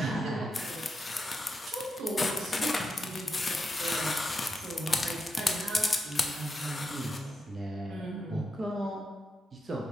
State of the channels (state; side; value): normal; both; correlation 0.85